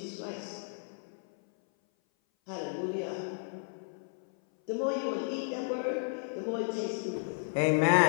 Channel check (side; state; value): right; silent; 56 dB below the other